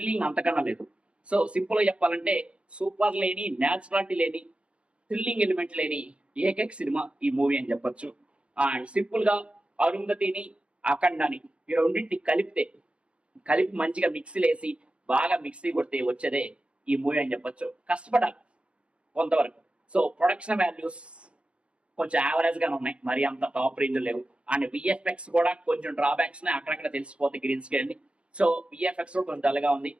అంతకన్నా లేదు. సో సింపుల్ గా చెప్పాలంటే సూపర్ లేని, న్యాచురాలిటీ లేని, థ్రిల్లింగ్ ఎలిమెంట్ లేని ఏకైక సినిమా ఈ మూవీ అని చెప్పొచ్చు. అండ్ సింపుల్ గా అరుంధతిని అఖండాని ఈ రెండింటిని కలిపి మంచిగా మిక్సీలు వేసి బాగా మిక్సీ కొడితే వచ్చేదే ఈ మూవీ అని చెప్పొచ్చు. కష్టపడాలి కొంతవరకు. సో ప్రొడక్షన్ వాల్యూస్ కొంచెం యావరేజ్ గానే ఉన్నాయి, మరి అంత టాప్ రేంజ్ లేవు. అండ్ విఎఫ్ఎక్స్ కూడా కొంచెం డ్రాబ్యాక్స్ అక్కడక్కడ తెలిసిపోతాయి గ్రీన్ స్క్రీన్. సో విఎఫ్ఎక్స్ కూడా కొంచెం డల్గా ఉంది.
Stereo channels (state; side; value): late; left; 0.059 ms